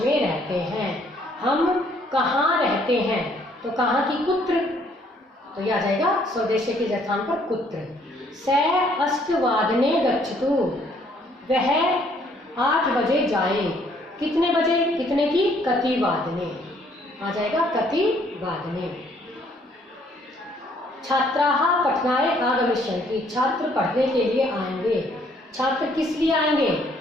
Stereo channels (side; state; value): both; normal; correlation 0.64